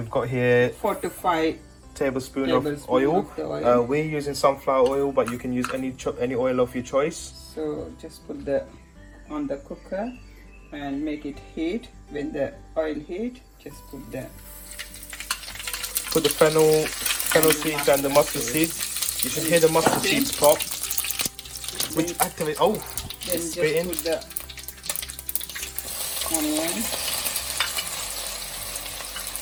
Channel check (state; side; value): identical; both; correlation 1.00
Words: got here 4 to 5 tablespoon of oil. of the oil. We're using sunflower oil, but you can use any oil of your choice. So just put the on the cooker and make it heat. When the oil heat, just put the fennel seeds and the mustard seeds. You should hear the mustard seeds pop, which activate. Oh, then it's just spitting. put the onion